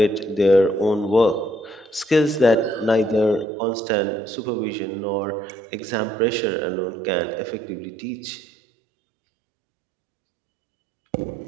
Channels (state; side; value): drops out; left; at 3.5 s